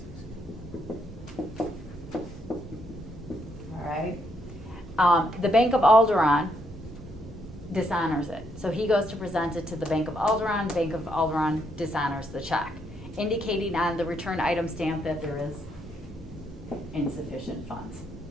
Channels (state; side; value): normal; both; correlation 0.75